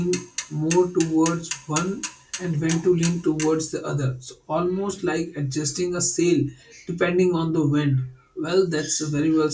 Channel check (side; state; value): both; identical; correlation 1.00